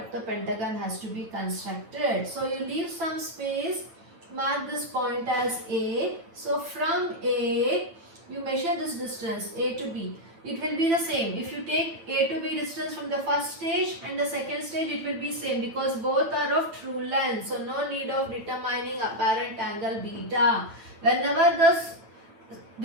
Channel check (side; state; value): left; late; 9.0 ms